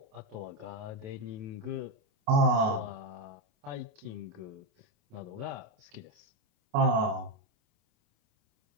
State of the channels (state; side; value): late; left; 28 ms